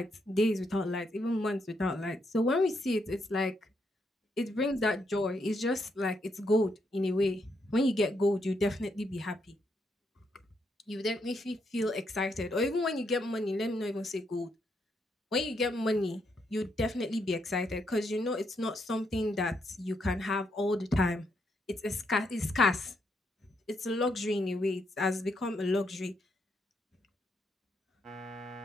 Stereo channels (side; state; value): both; normal; correlation 0.78